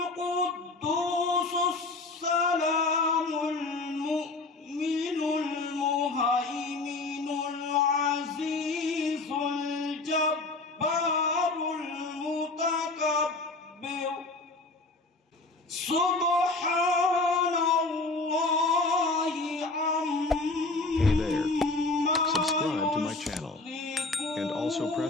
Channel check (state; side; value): quieter; right; 3.4 dB